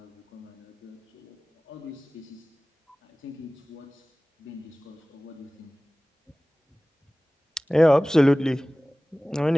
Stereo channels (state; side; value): normal; both; correlation 0.98